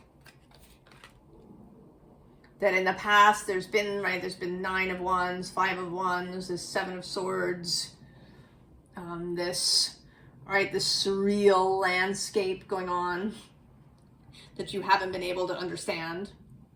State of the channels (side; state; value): both; identical; correlation 1.00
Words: That in the past there's been Nine of Wands, Five of Wands, this Seven of Swords, this surreal landscape going on that you haven't been able to understand.